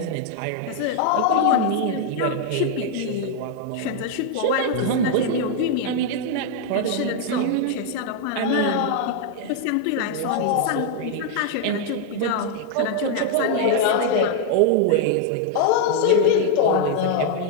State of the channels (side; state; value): both; different; correlation 0.00